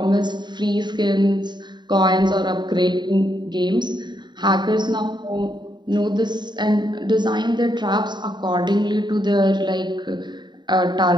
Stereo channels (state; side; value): late; left; 0.22 ms